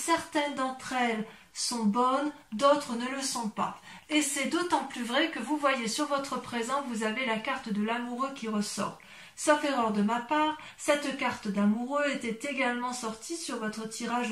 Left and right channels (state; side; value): identical; both; correlation 1.00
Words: d'entre elles sont bonnes, d'autres ne le sont pas. Et c'est d'autant plus vrai que vous voyez sur votre présent, vous avez la carte de l'amoureux qui ressort. Sauf erreur de ma part, cette carte d'amoureux était également sortie sur votre tirage